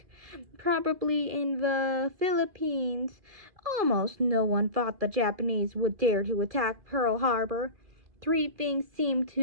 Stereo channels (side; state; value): left; late; 2.4 ms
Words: probably in the Philippines. Almost no one thought the Japanese would dare to attack Pearl Harbor. Three things seemed